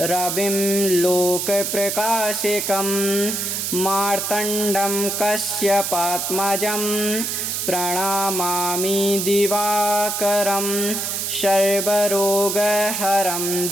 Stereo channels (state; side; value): noise; right; hiss, 2 dB below the sound